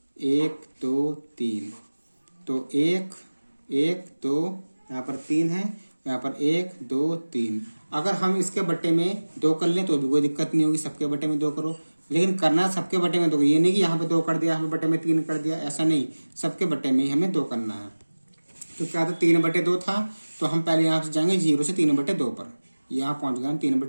1 2 3, तो 1 1 2, यहाँ पर 3 है, यहाँ पर 1 2 3। अगर हम इसके बट्टे में 2 कर लें तो भी कोई दिक्कत नहीं होगी, सबके बट्टे में 2 करो। लेकिन करना सबके बट्टे में 2, ये नहीं कि यहाँ पे 2 कर दिया, यहाँ पे बट्टे में 3 कर दिया, ऐसा नहीं, सबके बट्टे में ही हमें 2 करना है। तो क्या था, 3/2 था, तो हम पहले यहाँ से जाएंगे 0 से 3/2 पर, यहाँ पहुंच गए हम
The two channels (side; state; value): both; inverted; correlation -1.00